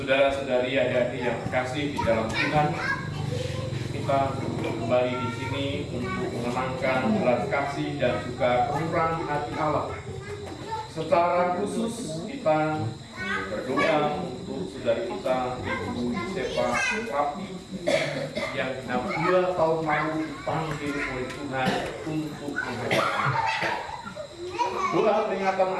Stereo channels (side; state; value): both; identical; correlation 1.00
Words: adik-adik yang terkasih di dalam Tuhan, kita kembali di sini untuk mengenangkan belas kasih dan juga kemurahan hati Allah. Secara khusus kita berdoa untuk saudari kita Ibu Yusefa Rapi yang 2 tahun lalu dipanggil oleh Tuhan untuk menghadapnya. Doa peringatan